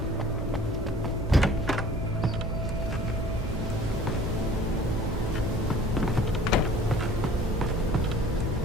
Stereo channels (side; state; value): both; normal; correlation 0.49